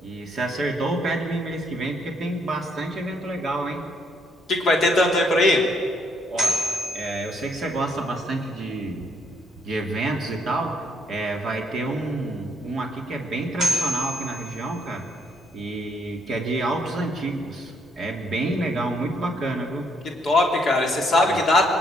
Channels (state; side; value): normal; both; correlation 0.71